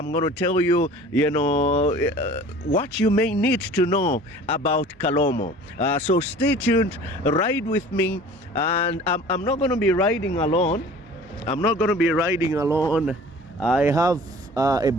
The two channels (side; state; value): both; normal; correlation 0.45